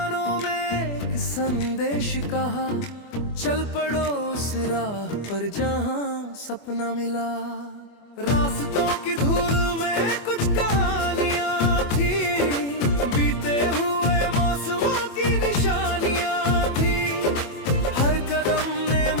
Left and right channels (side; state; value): right; late; 24 ms